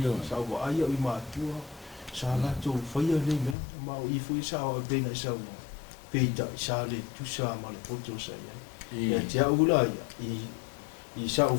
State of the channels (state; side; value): drops out; right; at 3.6 s